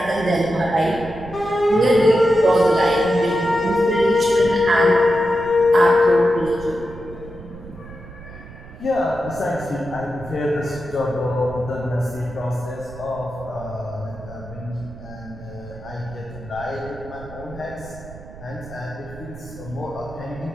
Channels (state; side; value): noise; right; rumble, 16 dB below the sound